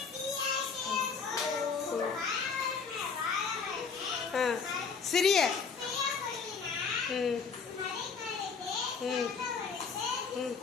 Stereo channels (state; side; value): quieter; right; 5.5 dB